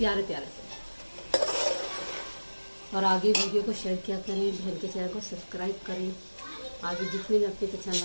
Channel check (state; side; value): inverted; both; correlation -1.00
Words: प्यारे से। और आगे वीडियो को शेयर किया करें, बहन के चैनल को सब्सक्राइब करें, आगे जितने भी आपके चैनल